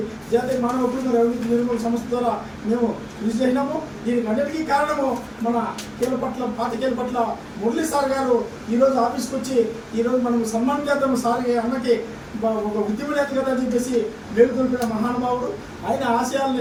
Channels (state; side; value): identical; both; correlation 1.00